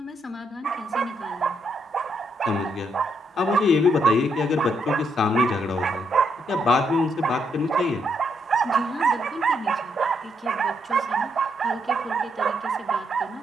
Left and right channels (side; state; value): both; normal; correlation 0.76